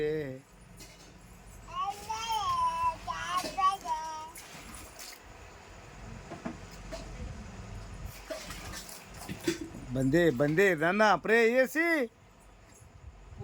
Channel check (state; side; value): identical; both; correlation 1.00